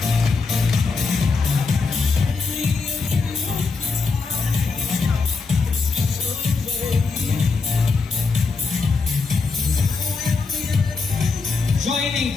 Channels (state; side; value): quieter; right; 4.5 dB